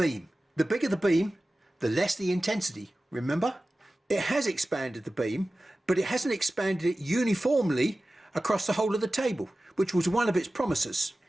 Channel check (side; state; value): both; normal; correlation 0.96